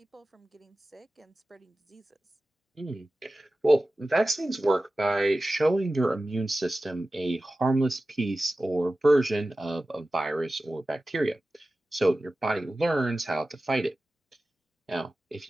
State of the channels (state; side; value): normal; both; correlation 0.95